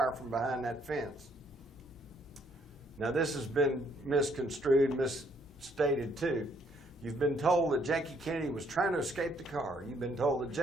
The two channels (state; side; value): normal; both; correlation 0.68